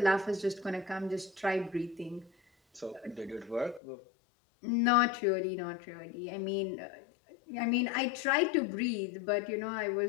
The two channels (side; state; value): right; drops out; at 3.8 s